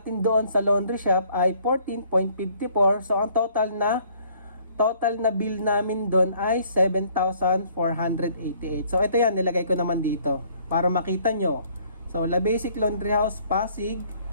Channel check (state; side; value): inverted; both; correlation -0.62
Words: doon sa laundry shop ay 14.54. So, ang total na bill namin doon ay 7,488. So, ito yan, nilagay ko naman dito para makita nyo. So, La Basic Laundry House Pasig,